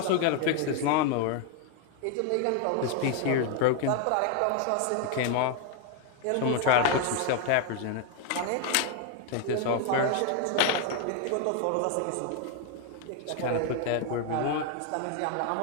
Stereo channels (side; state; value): both; different; correlation 0.00